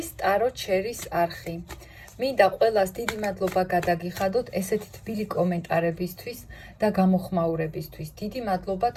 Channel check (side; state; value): both; identical; correlation 1.00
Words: ტარო ჩერის არხი. მინდა ყველას დიდი მადლობა გადაგიხადოთ ესეთი თბილი კომენტარებისთვის და გამოხმაურებისთვის. დიდი მადლობა